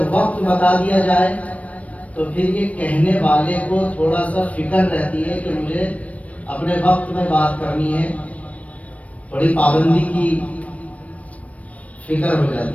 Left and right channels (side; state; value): right; late; 0.066 ms